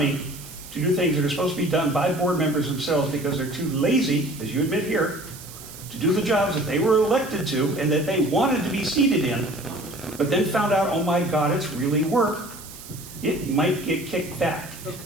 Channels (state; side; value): noise; right; hiss, 16 dB below the sound